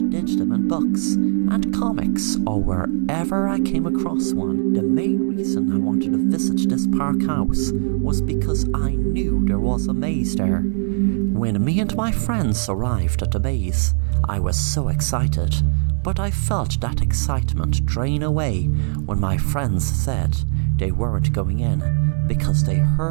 did them in books and comics or wherever I came across one. The main reason I wanted to visit this park house was because I knew there was a maze there. When me and my friends arrived at the maze, I was so excited, but I felt that excitement drain away when my friends said they weren't going in because they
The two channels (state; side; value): silent; left; digital silence